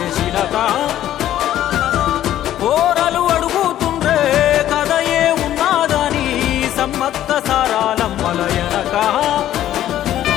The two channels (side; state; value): right; quieter; 12.3 dB